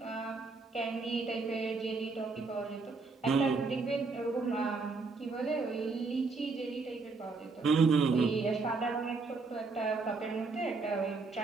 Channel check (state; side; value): quieter; left; 4.1 dB